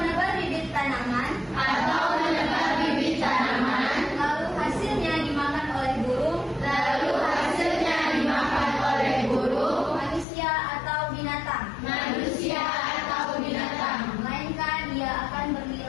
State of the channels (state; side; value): drops out; right; at 10.2 s